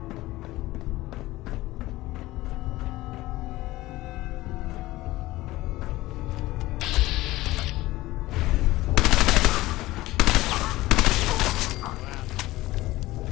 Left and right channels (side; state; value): right; quieter; 17.9 dB